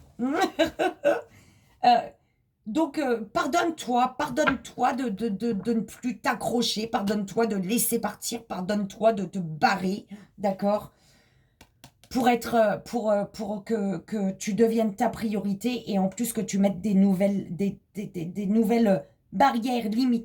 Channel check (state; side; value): identical; both; correlation 1.00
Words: Donc, pardonne-toi de ne plus t'accrocher, pardonne-toi de laisser partir, pardonne-toi de te barrer, d'accord? Pour que tu deviennes ta priorité et en plus que tu mettes des nouvelles barrières,